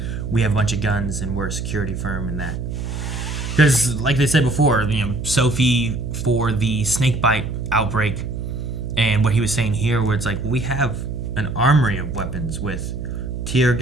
we have a bunch of guns and we're a security firm and that. Because, like they said before, Sophie for the snakebite outbreak, and what he was saying here, where it's like, we have an armory of weapons with tear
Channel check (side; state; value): right; noise; hum, 5 dB below the sound